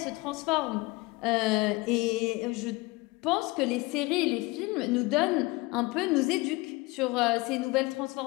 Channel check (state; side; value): quieter; right; 23.3 dB